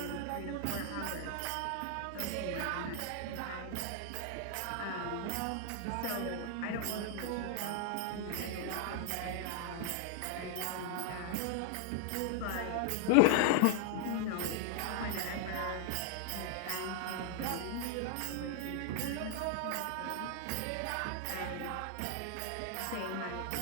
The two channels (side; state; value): both; different; correlation 0.00